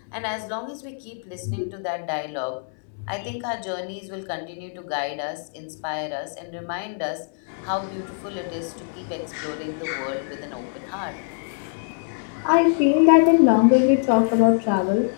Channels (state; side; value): silent; right; 63 dB below the other